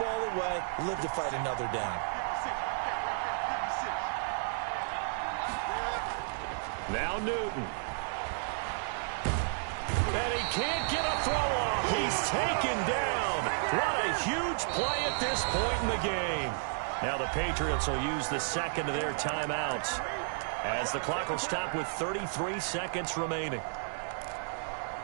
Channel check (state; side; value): silent; left; digital silence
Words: ball away, live to fight another down. Now Newton. And he can't get a throw off. He's taken down. What a huge play at this point in the game. Now the Patriots will use the second of their timeouts as the clock will stop with 33 seconds remaining.